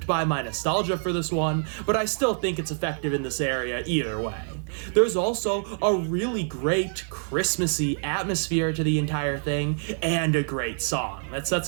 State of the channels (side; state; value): left; silent; 61 dB below the other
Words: by my nostalgia for this one, but I still think it's effective in this area either way. There's also a really great Christmassy atmosphere to the entire thing, and a great song that